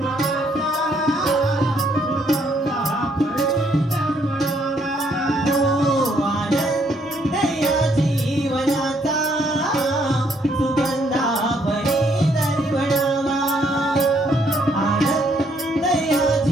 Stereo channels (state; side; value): normal; both; correlation 0.70